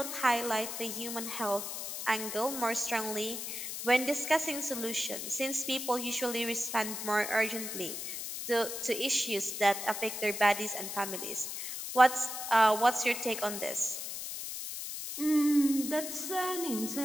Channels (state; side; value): noise; left; hiss, 6 dB below the sound